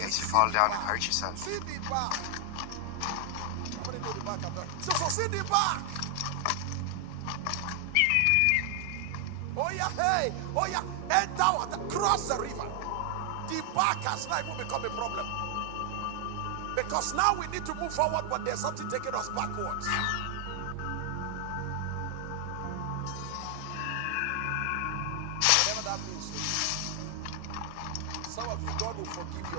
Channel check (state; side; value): different; both; correlation 0.00